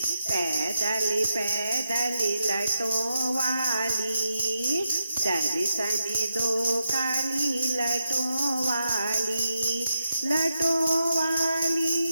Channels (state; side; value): inverted; both; correlation -0.85